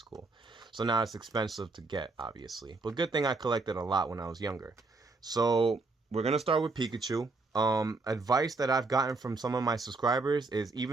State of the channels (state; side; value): quieter; left; 3.6 dB